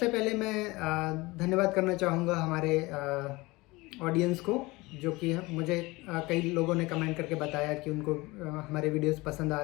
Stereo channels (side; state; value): right; quieter; 22.2 dB